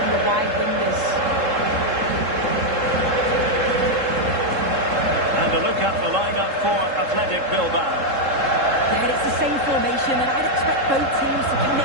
the wide wingers. And a look at the lineup for Athletic Bilbao. Yeah, it's the same formation, and I'd expect both teams to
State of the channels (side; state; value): left; late; 3.7 ms